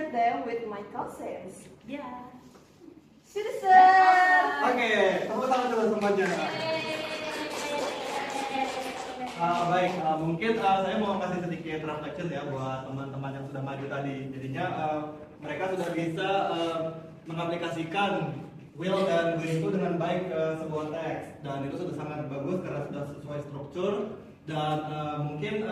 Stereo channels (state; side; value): identical; both; correlation 1.00